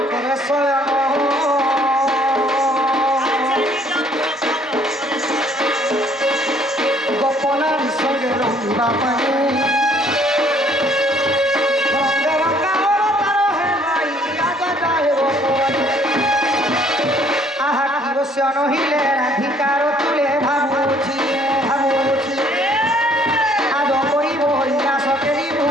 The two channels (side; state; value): both; normal; correlation 0.61